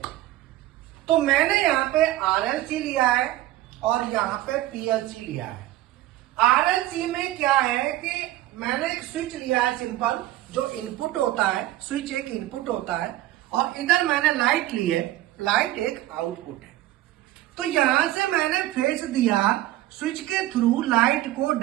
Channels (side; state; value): left; quieter; 15.5 dB